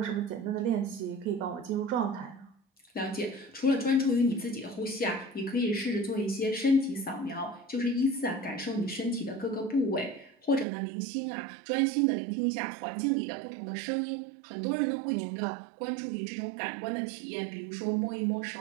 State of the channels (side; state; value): left; drops out; at 10.7 s